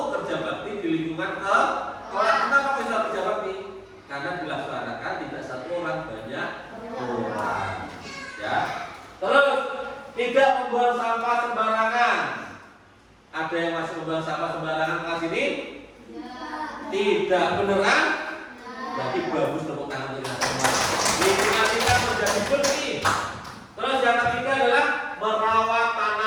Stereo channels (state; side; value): identical; both; correlation 1.00